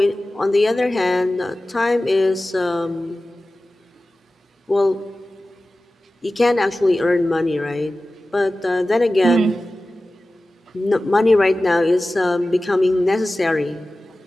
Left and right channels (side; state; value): both; normal; correlation 0.96